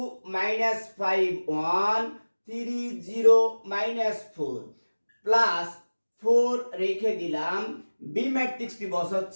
-5, 1, 3, 0, -4 প্লাস 4 রেখে দিলাম। বি ম্যাট্রিক্সটি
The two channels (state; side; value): inverted; both; correlation -1.00